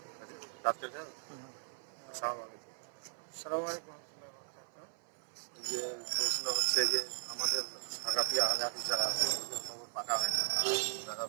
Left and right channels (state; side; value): silent; left; 53 dB below the other